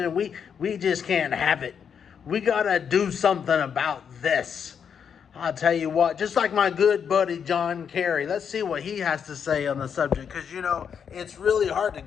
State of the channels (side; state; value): right; quieter; 7.3 dB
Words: We just can't have it. We gotta do something about this. I'll tell you what, just like my good buddy John Kerry, let's see what he has to say on the subject. Because, it's really hard to